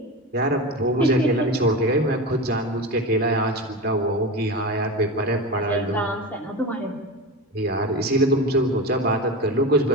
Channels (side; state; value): both; normal; correlation 0.24